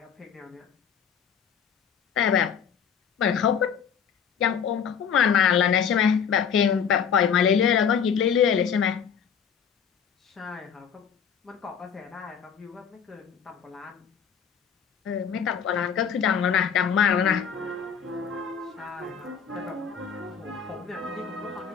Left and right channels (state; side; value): quieter; right; 7.3 dB